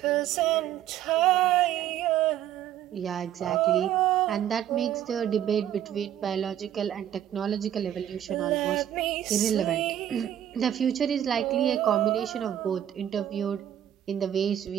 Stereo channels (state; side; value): quieter; left; 11.0 dB